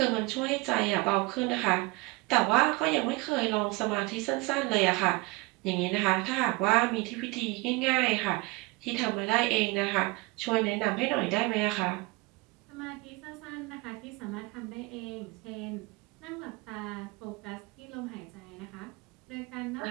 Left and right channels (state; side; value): quieter; left; 24.1 dB